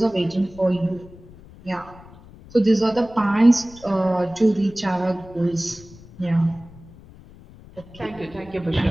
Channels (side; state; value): left; noise; rumble, 21 dB below the sound